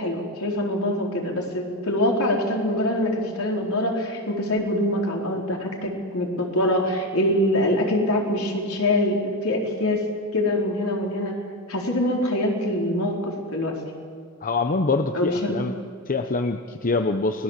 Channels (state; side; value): normal; both; correlation 0.16